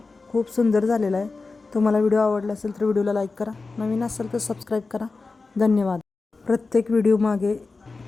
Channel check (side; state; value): right; quieter; 3.9 dB